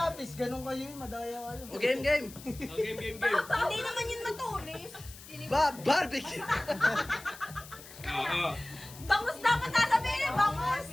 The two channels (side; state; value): left; noise; hiss, 17 dB below the sound